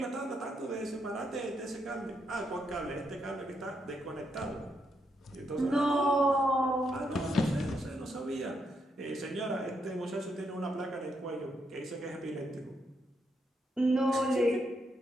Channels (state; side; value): normal; both; correlation 0.79